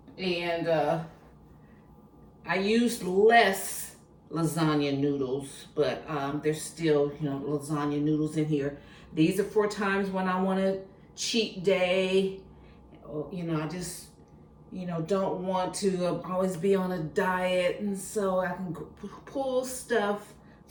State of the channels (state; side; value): identical; both; correlation 1.00